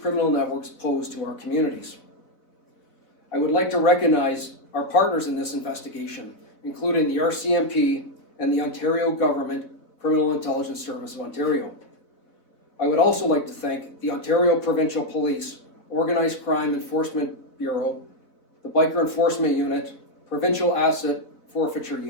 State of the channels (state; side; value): late; right; 4.0 ms